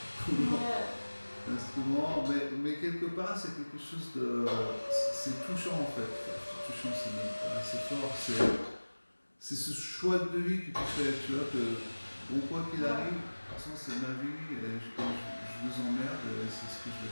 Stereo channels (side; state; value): both; inverted; correlation -1.00